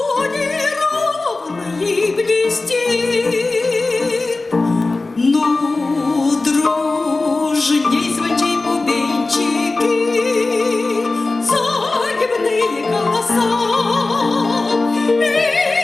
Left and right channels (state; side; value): quieter; right; 3.3 dB